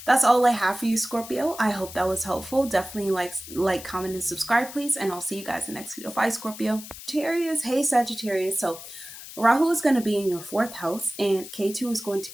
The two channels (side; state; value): left; noise; hiss, 13 dB below the sound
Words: that's all I have for you, Scorpio. I hope that was helpful. Definitely like, comment, and subscribe, please. And I'll see you guys in the next video. Bye, Scorpio. Sagittarius, hey Sagittarius. So Rahu is going to be in your 4th house, and K2 is going to